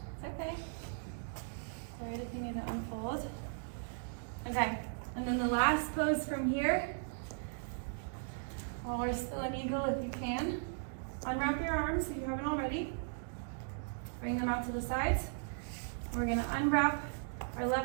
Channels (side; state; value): left; silent; digital silence